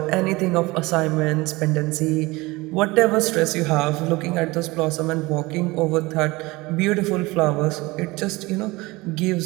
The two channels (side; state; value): left; quieter; 22.0 dB